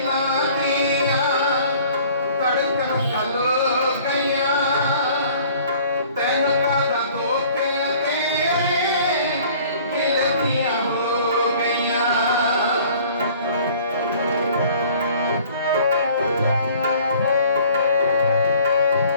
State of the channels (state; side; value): inverted; both; correlation -0.52